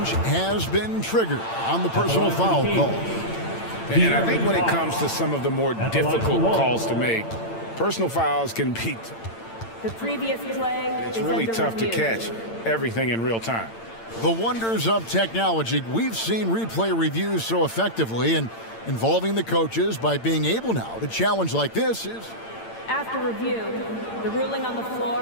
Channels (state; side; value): late; right; 8.8 ms